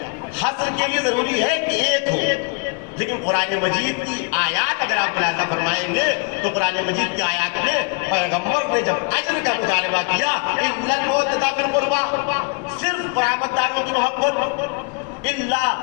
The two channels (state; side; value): quieter; right; 33.2 dB